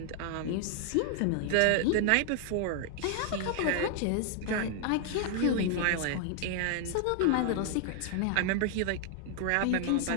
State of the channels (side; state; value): both; different; correlation 0.00